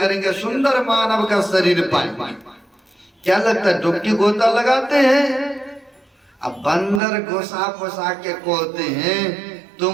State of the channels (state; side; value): drops out; left; at 7.0 s